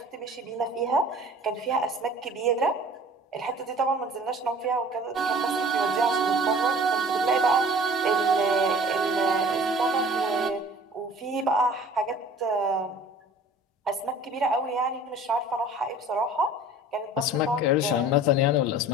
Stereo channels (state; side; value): normal; both; correlation 0.47